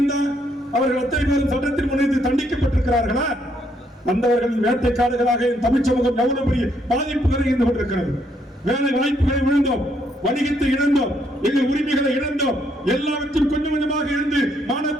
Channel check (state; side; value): normal; both; correlation 0.72